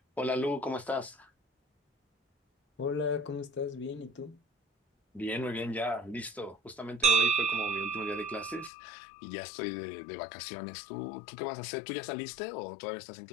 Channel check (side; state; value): right; drops out; at 8.7 s